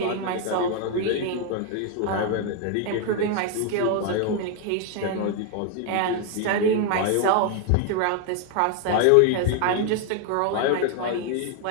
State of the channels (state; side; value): different; both; correlation 0.00